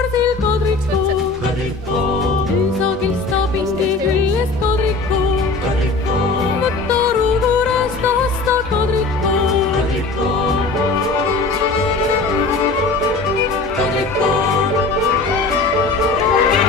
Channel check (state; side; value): quieter; right; 3.7 dB